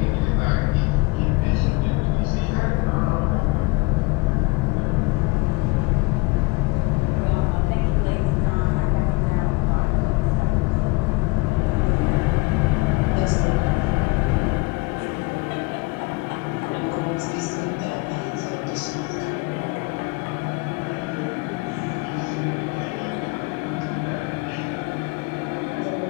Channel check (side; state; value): right; quieter; 25.0 dB